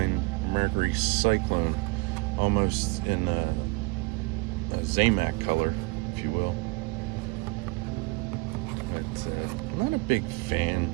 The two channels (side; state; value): left; quieter; 26.7 dB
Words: Mercury Cyclone, almost in a Zamac color, if you will. But I'm not a big fan